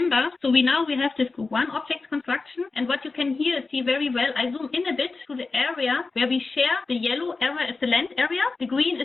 so now we have this group 1 object construction, and what you can here see very well, I zoom in a bit to the area where we share the yellow area is the land area, the green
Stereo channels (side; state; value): right; quieter; 3.9 dB